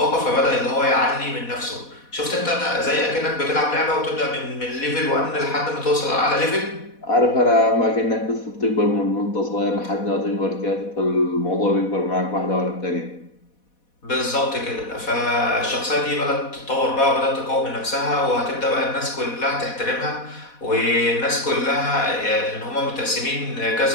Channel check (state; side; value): late; right; 4.1 ms